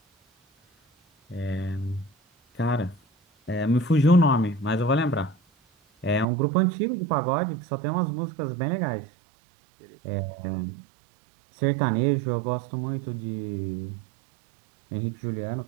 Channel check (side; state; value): left; drops out; at 6.2 s